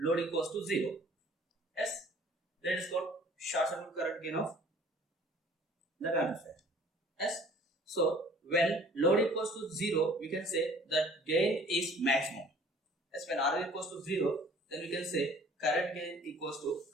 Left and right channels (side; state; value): both; normal; correlation 0.52